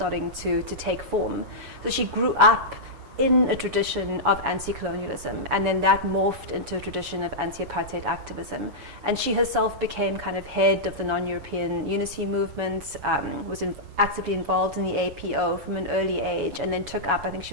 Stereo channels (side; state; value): left; late; 7.1 ms